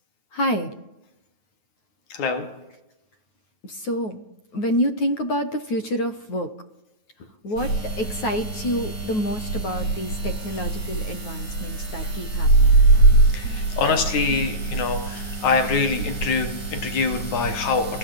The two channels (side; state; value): right; late; 9.4 ms